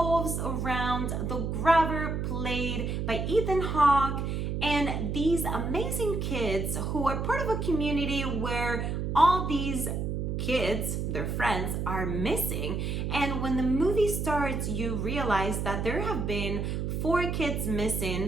around the grabber played by Ethan Hawke and these amazing kids who are part of a community where all these kids, their friends, are missing. And when the movie starts, you realize that there have been 4 kids missing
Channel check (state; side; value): noise; right; hum, 1 dB below the sound